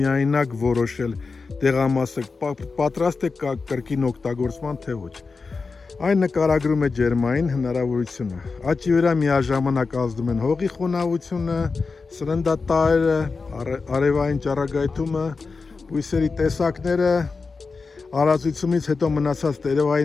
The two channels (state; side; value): quieter; right; 4.4 dB